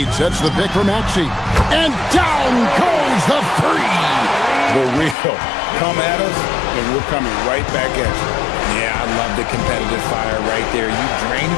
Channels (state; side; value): drops out; right; at 5.2 s